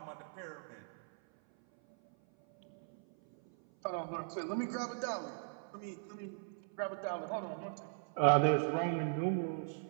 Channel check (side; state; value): left; silent; 52 dB below the other